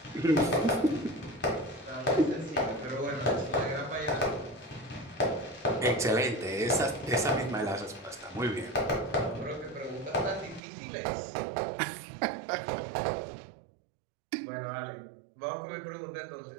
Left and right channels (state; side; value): drops out; left; at 10.6 s